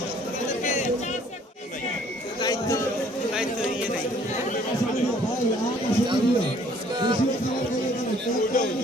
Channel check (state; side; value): normal; both; correlation 0.59